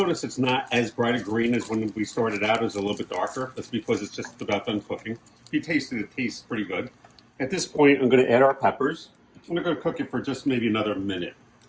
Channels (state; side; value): identical; both; correlation 1.00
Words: it's not as bright a green as when we started out. It was a little bit darker. That's because it's just about done cooking. If you taste it, it tastes pretty good. At this point, I'm going to add our peppers. I'm going to cook it for just maybe another minute.